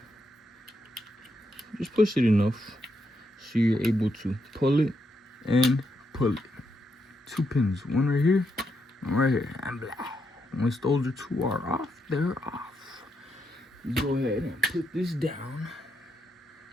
Just push it enough so you're able to pull it and pull it. 2 pins, one right here, one right here, and blah. Once those two are off, they're off. You go ahead and put this down.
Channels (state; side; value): normal; both; correlation 0.81